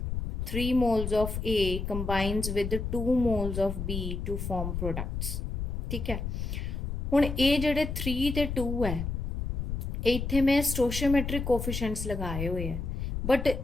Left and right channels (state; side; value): noise; left; rumble, 3 dB below the sound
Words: 3 moles of A combines with 2 moles of B to form products, ਠੀਕ ਹੈ। ਹੁਣ ਇਹ ਜਿਹੜੇ 3 ਤੇ 2 ਹੈ ਇੱਥੇ ਮੈਂ ਸਟੋਸ਼ੀਓਮੈਟ੍ਰਿਕ ਕੋਫੀਸ਼ੀਐਂਟਸ ਲਗਾਏ ਹੋਏ ਹੈ, ਬਟ